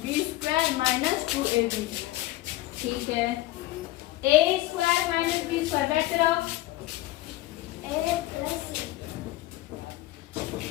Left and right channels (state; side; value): quieter; right; 17.1 dB